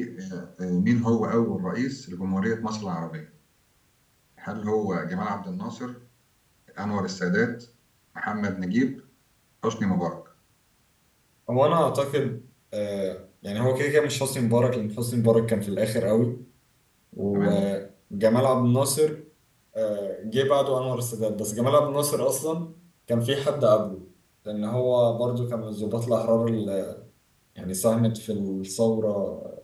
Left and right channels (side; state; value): both; identical; correlation 1.00